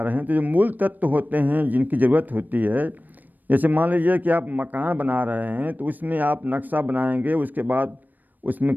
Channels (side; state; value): left; late; 0.086 ms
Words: रहे हैं, तो जो मूल तत्व होते हैं जिनकी ज़रूरत होती है, जैसे मान लीजिए कि आप मकान बना रहे हैं तो उसमें आप नक्शा बनाएंगे, उसके बाद उसमें